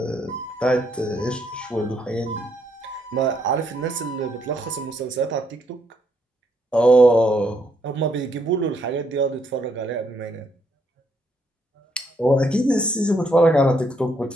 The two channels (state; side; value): normal; both; correlation 0.73